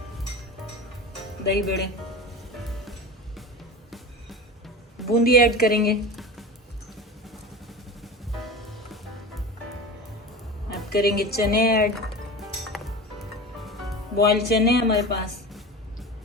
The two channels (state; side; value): normal; both; correlation 0.30